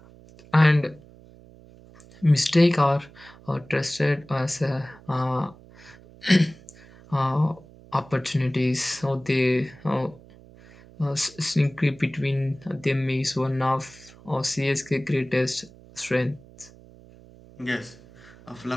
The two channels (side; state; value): right; noise; hum, 23 dB below the sound